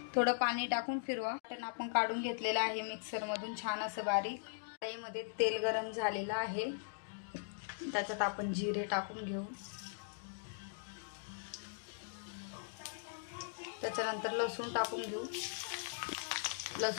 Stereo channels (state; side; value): silent; right; digital silence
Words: थोडं पाणी टाकून फिरवा। आपण काढून घेतलेलं आहे मिक्सर मधून छान असं बारीक। कढईमध्ये तेल गरम झालेलं आहे, त्याच्यात आपण जिरे टाकून घेऊ। त्याच्यानंतर लसूण टाकून घेऊ।